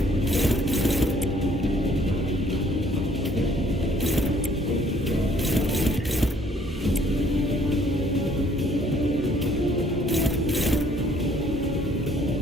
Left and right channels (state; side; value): normal; both; correlation 0.61